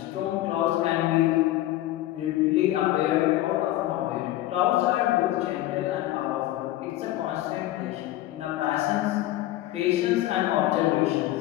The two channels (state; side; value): quieter; right; 15.3 dB